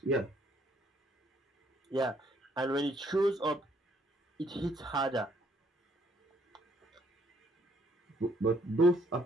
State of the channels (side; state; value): both; normal; correlation 0.68